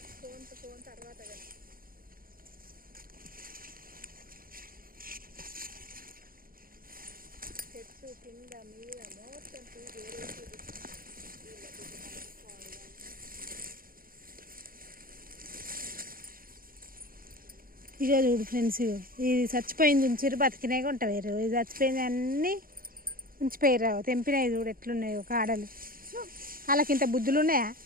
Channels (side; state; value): left; late; 0.42 ms